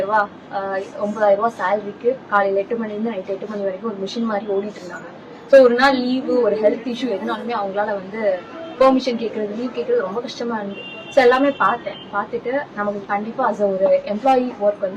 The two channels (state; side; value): identical; both; correlation 1.00